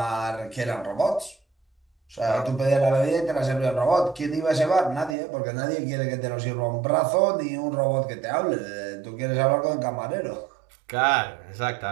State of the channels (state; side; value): drops out; left; at 5.2 s